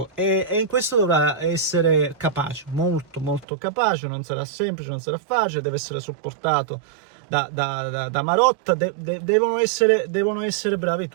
e in questo dovrà essere capace, molto molto capace. Non sarà semplice, non sarà facile, deve essere supportato da Marotta, devono essere bravi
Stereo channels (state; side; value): drops out; left; at 3.5 s